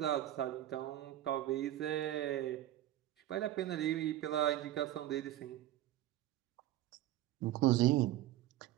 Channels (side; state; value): left; quieter; 14.0 dB